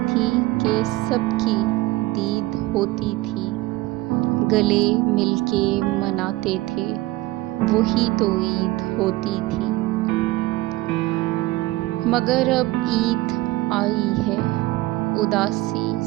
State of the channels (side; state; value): left; quieter; 18.7 dB